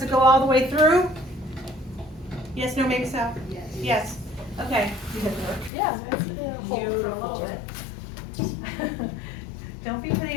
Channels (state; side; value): drops out; right; at 5.7 s